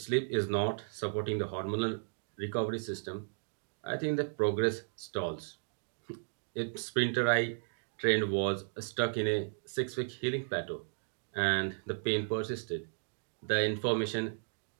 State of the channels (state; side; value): silent; left; digital silence